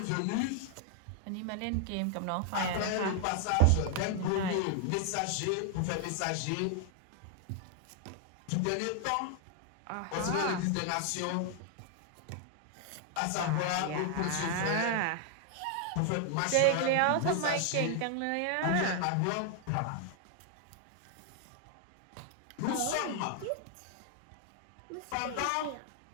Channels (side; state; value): both; different; correlation 0.00